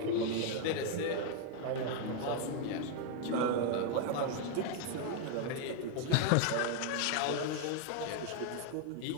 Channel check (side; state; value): both; different; correlation 0.00